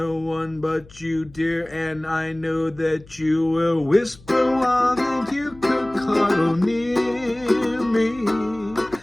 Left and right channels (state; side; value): noise; left; hum, 23 dB below the sound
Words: one but you, dear, and I know that you will whisper while that you could cuddle near me.